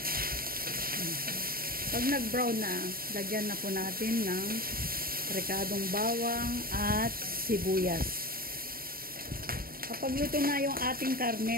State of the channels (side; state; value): left; late; 0.43 ms